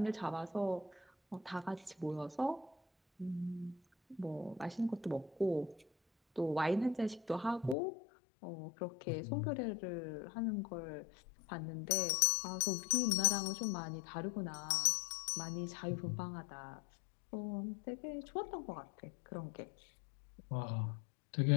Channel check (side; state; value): right; drops out; at 7.8 s